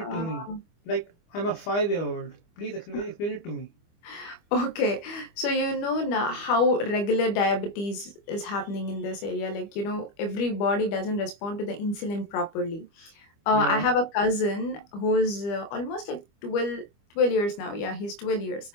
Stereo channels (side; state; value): right; late; 25 ms